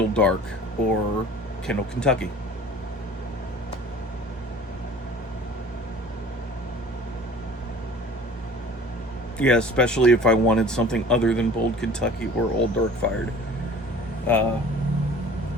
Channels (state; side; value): normal; both; correlation 0.46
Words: Dark or Kendall Kentucky. Yeah, especially if I wanted something other than Bold Kentucky or Old Dark Fired. Uh,